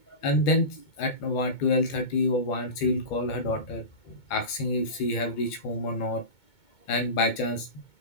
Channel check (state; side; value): late; right; 2.2 ms